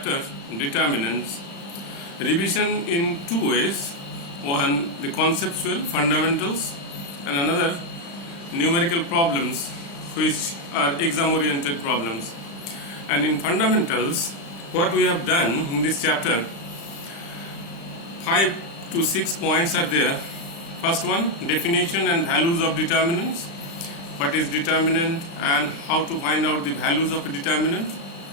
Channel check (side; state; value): right; late; 35 ms